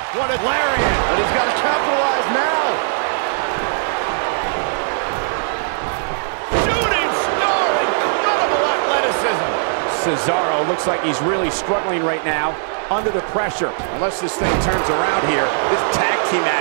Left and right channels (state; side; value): silent; left; digital silence